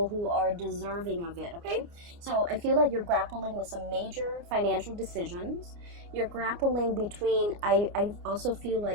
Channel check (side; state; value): left; late; 29 ms